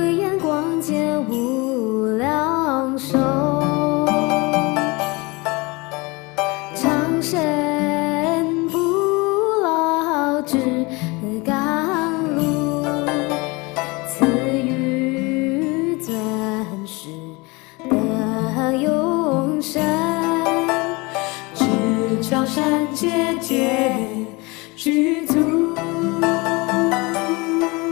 眼光见无量寿，长生不老之甘露，赐予尊师的永生。高山节节具足，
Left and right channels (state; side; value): quieter; right; 25.5 dB